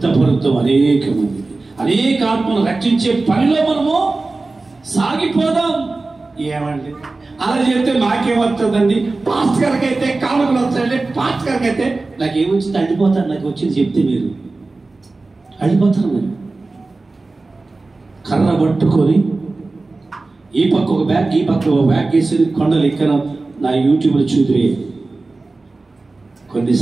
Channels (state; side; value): quieter; left; 3.4 dB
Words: అనేక మంది, అనేక ఆత్మను రక్షించే పనిలో మనము సాగిపోదాం. ఏమండి అలా చెప్తే నాకేమవుతుందండి? పాస్టర్ గారికి అయితే కానుకలు వస్తాయండి, పాస్టర్ గారికి అయితే నాకేమొచ్చింది అడిపోతాను. నాకు వచ్చింది చెప్తే మీరు అడిపోతారు. మీరు కర్ర పట్టుకొని ఈ పక్క ఒక బ్యాగ్, ఈ పక్క ఒక బ్యాగ్ వేసి కొండలు ఎక్కన నా యూట్యూబ్లో చూద్దురే. కొన్ని